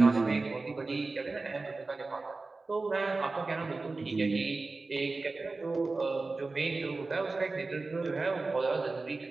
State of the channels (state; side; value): quieter; left; 3.6 dB